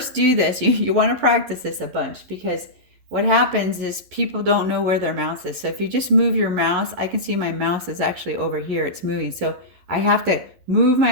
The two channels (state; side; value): late; left; 11 ms